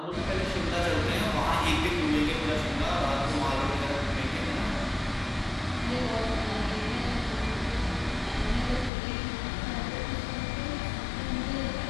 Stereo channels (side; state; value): right; drops out; at 8.9 s